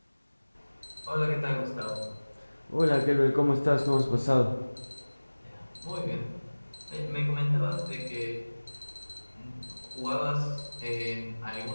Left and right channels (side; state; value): both; inverted; correlation -1.00